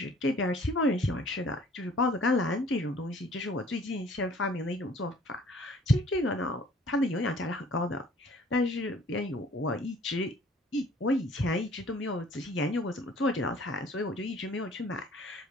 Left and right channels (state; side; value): normal; both; correlation 0.54